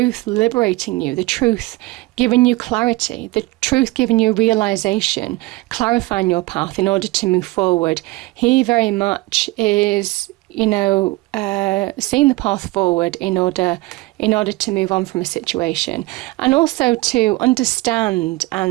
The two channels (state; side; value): quieter; left; 20.8 dB